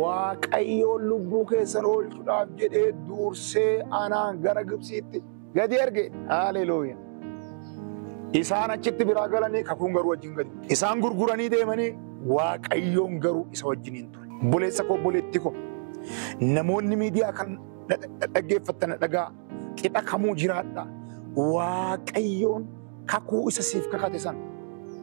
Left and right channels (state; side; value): silent; left; digital silence